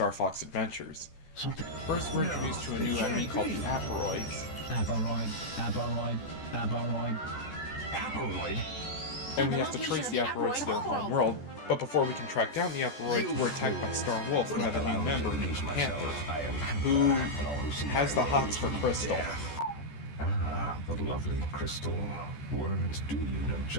Fox Adventures. Something. First, we're introduced to a new enemy called the Aporoids. Aporoid? And we have to trace the Aporoids to their home world, but before we can track down the Aporoids, we're attacked by Star Wolf, who have a new member named Panther, who has the hots for Crystal. Ah, the lovely Crystal. Words do you no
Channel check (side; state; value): right; late; 14 ms